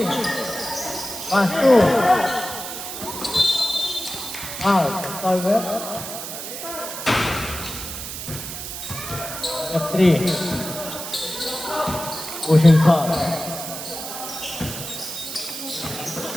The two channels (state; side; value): noise; right; hiss, 8 dB below the sound